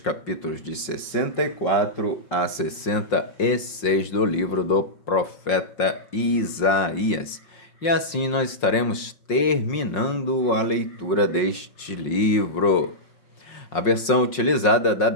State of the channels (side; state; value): right; late; 5.6 ms